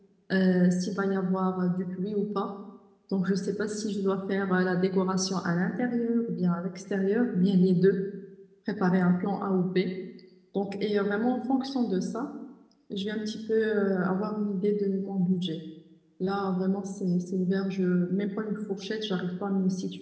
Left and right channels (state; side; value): identical; both; correlation 1.00